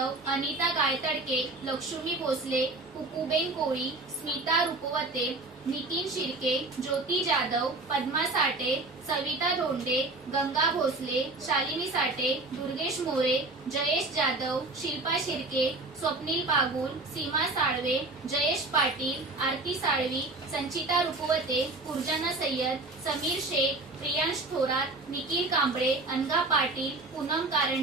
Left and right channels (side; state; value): left; quieter; 3.1 dB